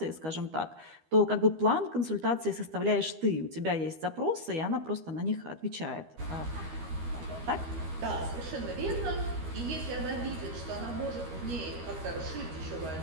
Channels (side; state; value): left; late; 13 ms